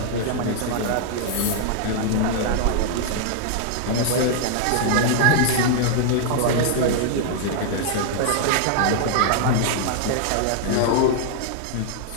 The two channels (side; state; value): both; different; correlation 0.00